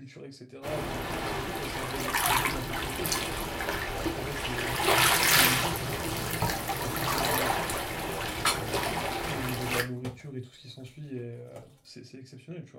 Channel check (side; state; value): both; identical; correlation 1.00